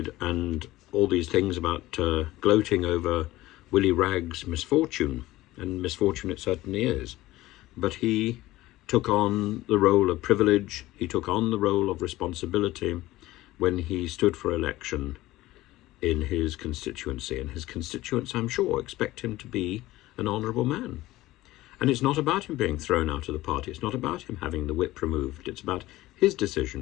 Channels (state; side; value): quieter; right; 17.2 dB